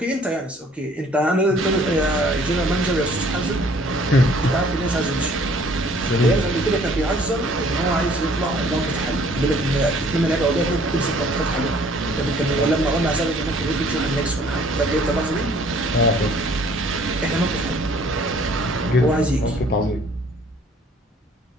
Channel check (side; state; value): both; normal; correlation 0.57